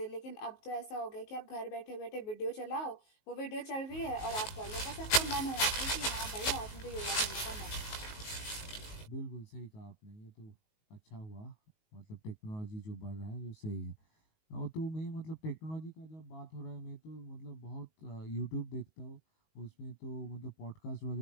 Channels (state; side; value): late; right; 19 ms